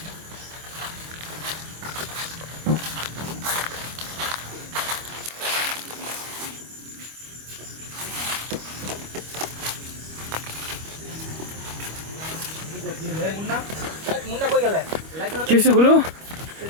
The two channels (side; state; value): left; late; 25 ms